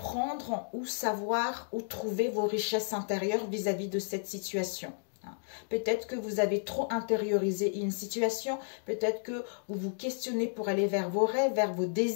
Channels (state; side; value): silent; right; digital silence